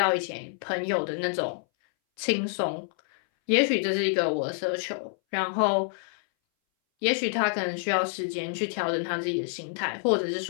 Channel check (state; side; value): silent; right; 60 dB below the other